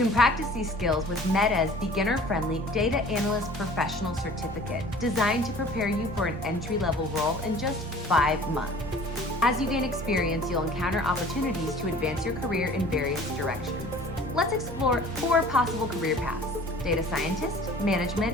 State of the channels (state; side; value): normal; both; correlation 0.47